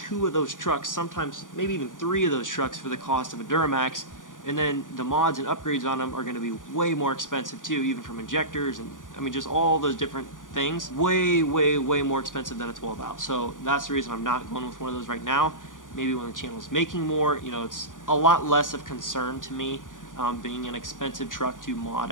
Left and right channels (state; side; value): late; right; 0.88 ms